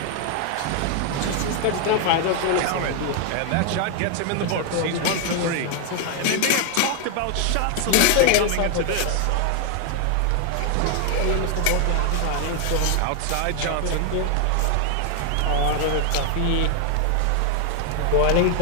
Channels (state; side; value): different; both; correlation 0.00